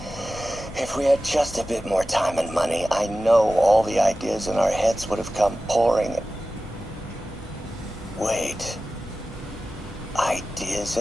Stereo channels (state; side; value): normal; both; correlation 0.95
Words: If we had just a bit more time and money, I know all the ideas in our heads would have come pouring. Wait. Ideas